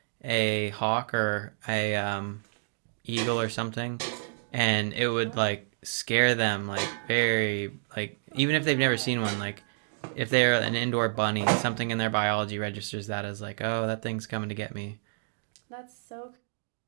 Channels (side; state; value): left; silent; digital silence